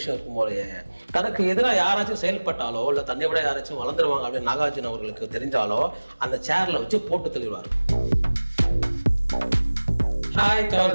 இருக்கும் போலயே. தனக்கு எதிராக யாராச்சும் செயல்பட்டாலோ இல்லை தன்னை விட யாராச்சும் வளர்ந்துருவாங்க அப்படின்னு நாகார்ஜுன அவர்களுக்கு தெரிஞ்சாலோ அந்த சேரில் வச்சு போட்டு தள்ளிடுவார். ஹாய்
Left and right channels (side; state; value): both; inverted; correlation -1.00